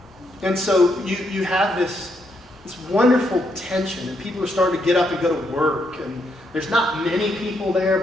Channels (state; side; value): normal; both; correlation 0.77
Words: And so you have this wonderful tension, and people are starting to get up and go to work. And there's not many people there,